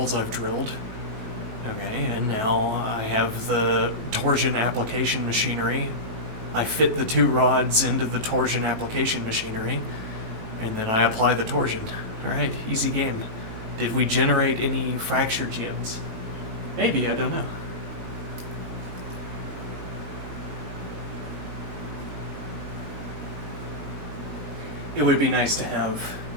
I've drilled. Okay, and now I have the torsion application machinery. I fit the two rods into the torsion application machinery, and then I apply the torsion. Alright, easy game. Did we generate any fracture gems? Maybe, I don't know. It would be nice to have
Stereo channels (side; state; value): left; late; 18 ms